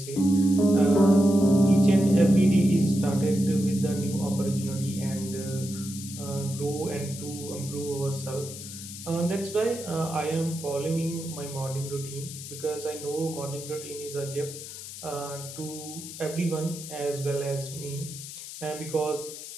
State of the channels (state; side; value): noise; left; hiss, 11 dB below the sound